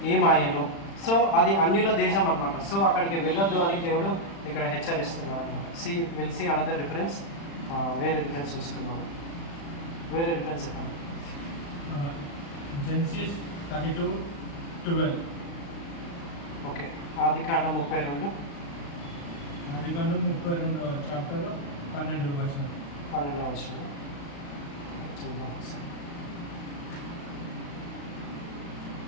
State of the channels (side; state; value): right; late; 35 ms